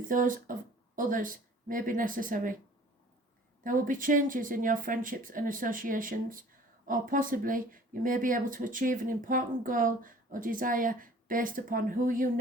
those of others may be necessary. There will be changes in your friendships and associations, or possibly you may be able to achieve an important goal or desire based upon who you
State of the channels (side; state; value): both; normal; correlation 0.50